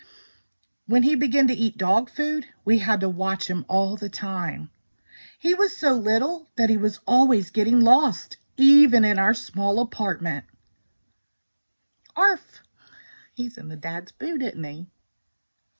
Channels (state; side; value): inverted; both; correlation -1.00